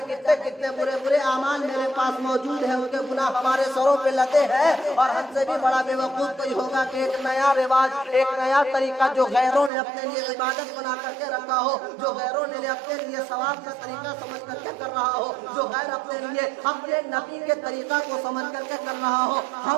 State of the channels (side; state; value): left; drops out; at 9.7 s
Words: کتنے برے اعمال میرے پاس موجود ہیں، ان کے گناہ ہمارے سروں پہ لدے ہیں۔ اور ہم سے بھی بڑا بے وقوف کوئی ہوگا کہ ایک نیا رواج، ایک نیا طریقہ جو غیروں نے اپنے لیے عبادت بنا کر کے رکھا ہو، جو غیروں نے اپنے لیے ثواب کا طریقہ سمجھ کر کے کر رہا ہو، جو غیر اپنے لیے اپنے نبی کے طریقہ کو سمجھ کر کے کر رہا ہو،